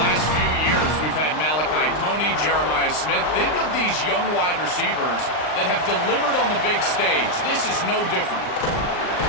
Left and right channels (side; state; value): right; late; 39 ms